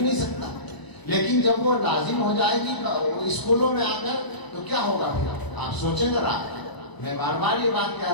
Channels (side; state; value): right; late; 1.0 ms